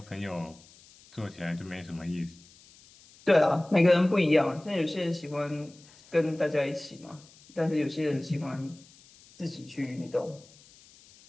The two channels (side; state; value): left; noise; hiss, 25 dB below the sound